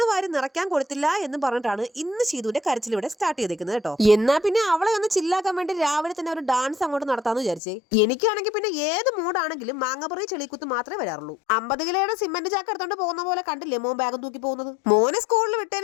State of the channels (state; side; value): drops out; right; at 7.6 s